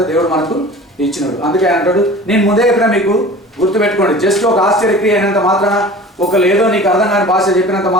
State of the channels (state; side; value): normal; both; correlation 0.41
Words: దేవుడు మనకు ఇచ్చినాడు. అందుకే ఆయన అంటాడు, నేను ముందే చెప్పినా మీకు, గుర్తుపెట్టుకోండి. జస్ట్ ఒక ఆశ్చర్యక్రియ అయినంత మాత్రాన, ఏదో నీకు అర్థం కాని భాష చెప్పినంత